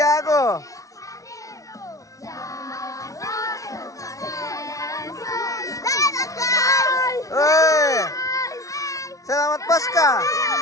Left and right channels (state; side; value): late; right; 0.16 ms